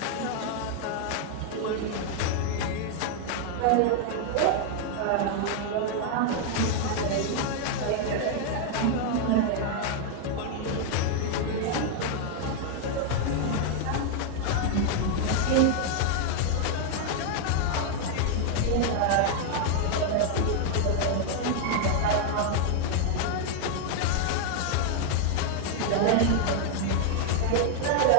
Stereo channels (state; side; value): different; both; correlation 0.00